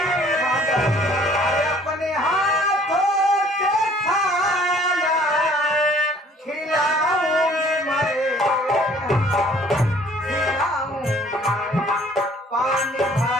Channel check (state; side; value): normal; both; correlation 0.56